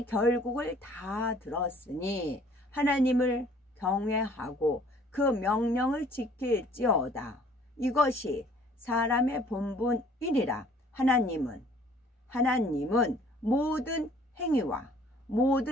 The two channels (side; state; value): both; normal; correlation 0.56